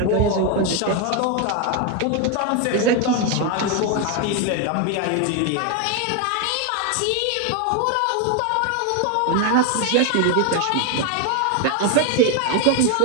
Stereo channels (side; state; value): both; different; correlation 0.01